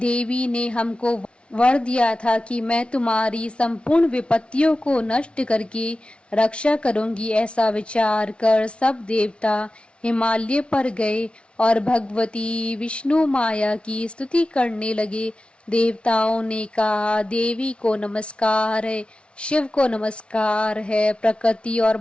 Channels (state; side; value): late; right; 0.059 ms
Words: ने हमको वर दिया था कि मैं तुम्हारी संपूर्ण विपत्तियों को नष्ट करके रक्षा करूंगी। ऐसा विचार कर सब देवता हिमालय पर गए और भगवती विष्णु माया की स्तुति करने लगे। देवताओं ने कहा, देवी को नमस्कार है, शिव को नमस्कार है, प्रकृति और